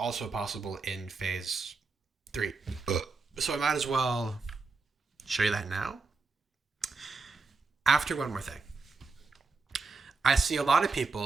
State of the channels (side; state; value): left; quieter; 4.1 dB